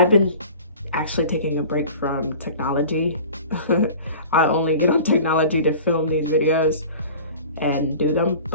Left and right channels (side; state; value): both; inverted; correlation -0.41